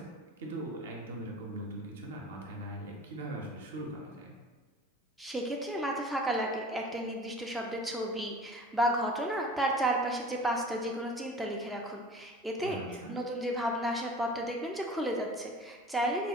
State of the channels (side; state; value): both; normal; correlation 0.42